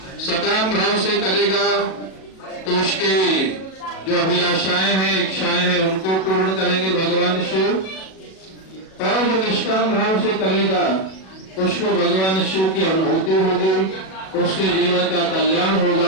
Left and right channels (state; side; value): late; right; 37 ms